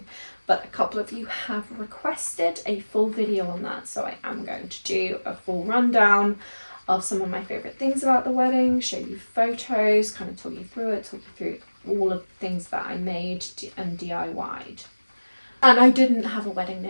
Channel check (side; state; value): both; inverted; correlation -1.00